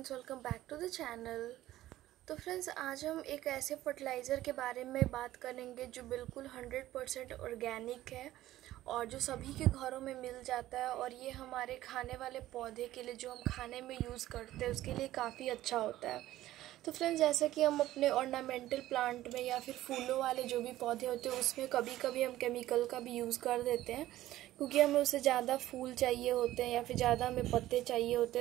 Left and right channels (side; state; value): left; quieter; 14.9 dB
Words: welcome back to the channel. तो friends, आज हम एक ऐसे फर्टिलाइज़र के बारे में बात करेंगे जो बिल्कुल 100% ऑर्गेनिक है और जो सभी के घरों में मिल जाता है। और ये हमारे खाने वाले पौधे के लिए, जो हम खाने में यूज़ करते हैं, उसके लिए काफ़ी अच्छा होता है। तो फ्रेंड्स, जैसा कि हम अपने ऑर्नामेंटल प्लांट में या फिर फूलों वाले जो भी पौधे होते हैं उसमें कभी कभी हम केमिकल का भी यूज़ कर देते हैं, क्योंकि हमें उससे ज़्यादा फूल चाहिए होते हैं या फिर ज़्यादा हमें पत्ते चाहिए होते